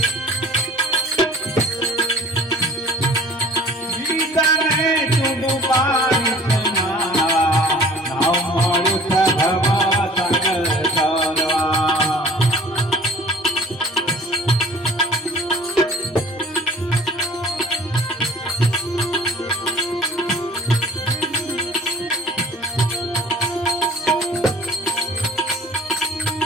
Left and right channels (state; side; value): normal; both; correlation 0.48